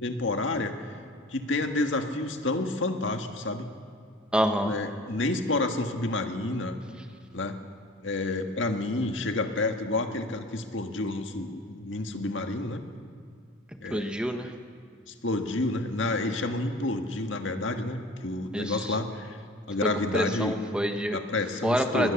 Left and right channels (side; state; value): both; normal; correlation 0.44